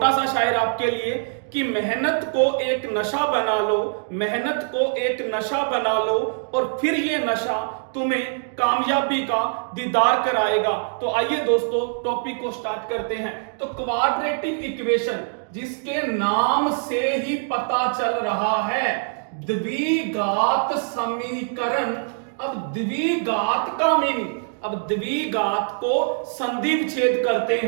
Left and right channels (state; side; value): silent; left; digital silence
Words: सा शायर आपके लिए कि मेहनत को एक नशा बना लो, मेहनत को एक नशा बना लो और फिर ये नशा तुम्हें कामयाबी का दीदार कराएगा। तो आइए दोस्तों टॉपिक को स्टार्ट करते हैं। तो क्वाड्रेटिक इक्वेशन, जिसके नाम से ही पता चल रहा है द्विघात समीकरण। अब द्विघात का मीनिंग, अब द्विघात को संधि विच्छेद करते